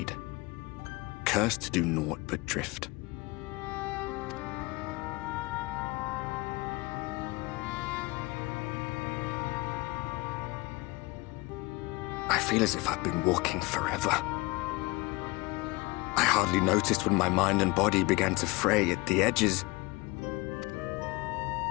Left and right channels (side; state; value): right; quieter; 23.5 dB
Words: cursed to do naught but drift. I feel as if I've been walking forever. I hardly noticed when my mind and body began to fray at the edges.